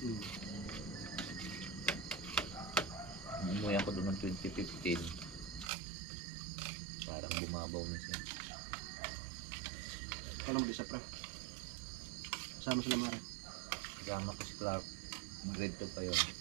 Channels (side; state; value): left; drops out; at 5.7 s